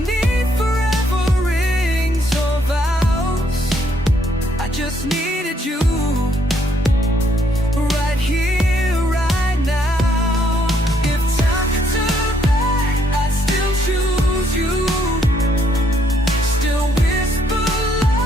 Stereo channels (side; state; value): both; normal; correlation 0.70